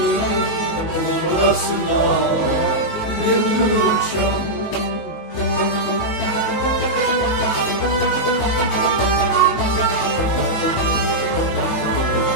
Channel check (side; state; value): right; late; 19 ms